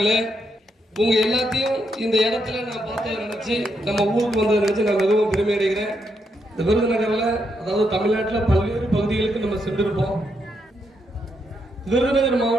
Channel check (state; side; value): normal; both; correlation 0.79